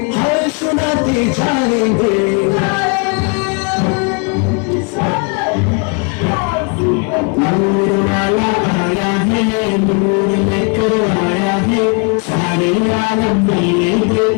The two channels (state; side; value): quieter; right; 35.2 dB